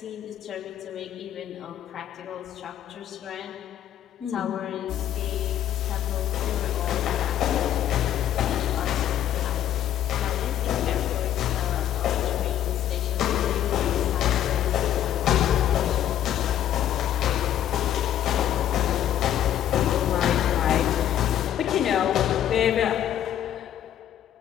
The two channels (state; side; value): quieter; right; 11.1 dB